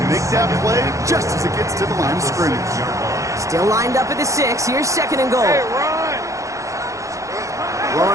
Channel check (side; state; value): left; late; 0.15 ms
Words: make that play just as it gets to the line of scrimmage. Still lined up at the 6. Here's second and goal.